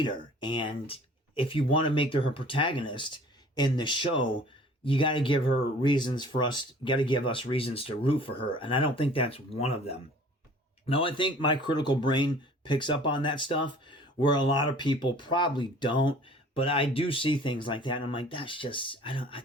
And if you want to make her protagonist in the show, you got to give us reasons to root for her. And I don't think that's one of them. Now, I think my critical brain picks up on that stuff where a lot of people probably don't, but I do see things like that. And I'm like, that's just,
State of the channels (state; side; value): normal; both; correlation 0.50